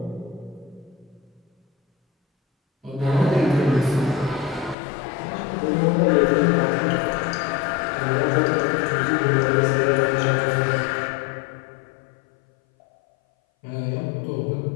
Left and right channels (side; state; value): right; drops out; at 4.8 s